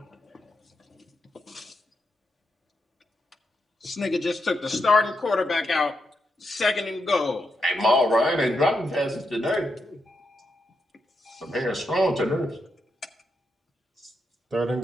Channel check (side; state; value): both; normal; correlation 0.83